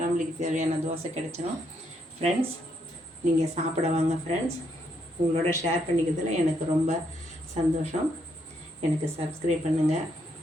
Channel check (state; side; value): normal; both; correlation 0.75